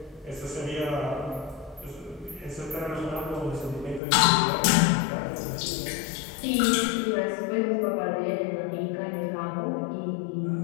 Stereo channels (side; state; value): right; drops out; at 4.0 s